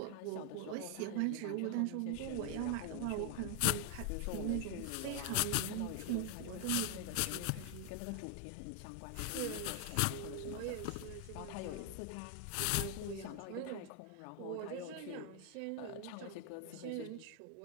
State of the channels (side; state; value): both; different; correlation 0.00